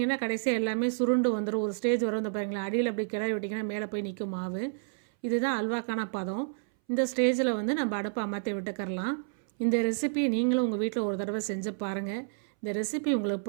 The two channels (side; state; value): left; silent; 58 dB below the other